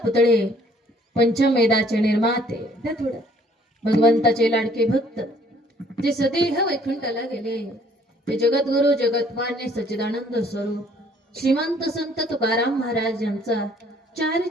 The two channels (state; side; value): normal; both; correlation 0.60